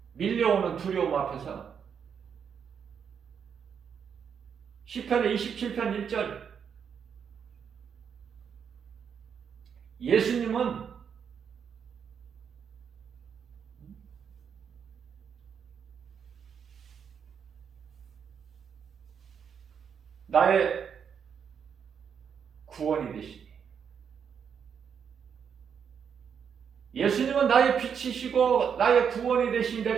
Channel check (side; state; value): left; quieter; 7.3 dB